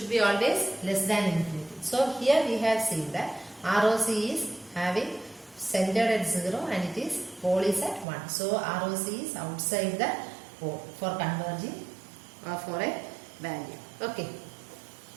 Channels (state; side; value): drops out; left; at 8.1 s